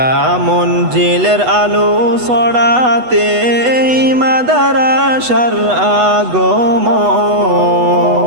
মঞ্জিলের আলো ছড়াতে মাদারাসার আগমন।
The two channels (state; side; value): late; left; 8.1 ms